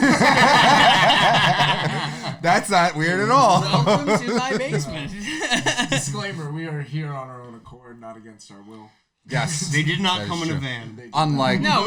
That's not weird at all. Welcome to my basement. Disclaimer, we are here on our own accord, not against our will. Yes. They did not That is come in a true. van. Unlike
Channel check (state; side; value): identical; both; correlation 1.00